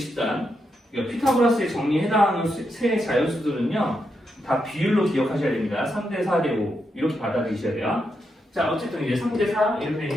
그러니까 피타고라스에 정리에 해당하는 세 자연수들은요. 다 비율로 기억하셔야 됩니다. 3대 4대 5. 이렇게 받아들이셔야 돼요. 자, 어쨌든 이제 3대 4 이렇게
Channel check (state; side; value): normal; both; correlation 0.83